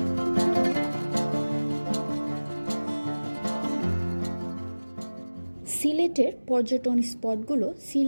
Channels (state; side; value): inverted; both; correlation -1.00